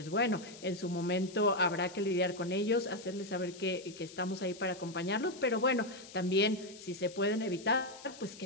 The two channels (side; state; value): left; noise; hiss, 18 dB below the sound